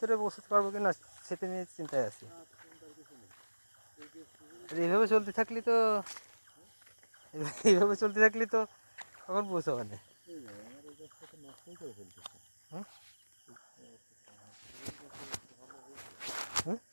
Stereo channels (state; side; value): inverted; both; correlation -1.00